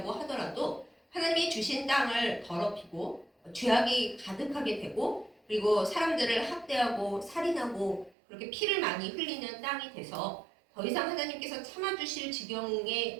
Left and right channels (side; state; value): left; drops out; at 8.2 s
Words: 하더라도 하나님이 주신 땅을 더럽히고 죄악이 가득하게 되고 그리고 사람들을 학대하고 살인하고 그렇게 피를 많이 흘리는 땅이 돼서 더 이상 하나님께서 참아주실